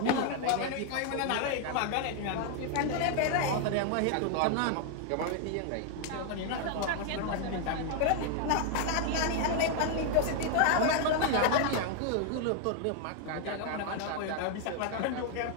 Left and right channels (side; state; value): both; different; correlation 0.00